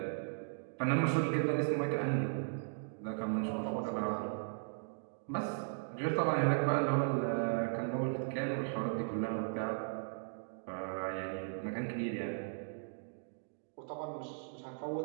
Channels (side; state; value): left; silent; digital silence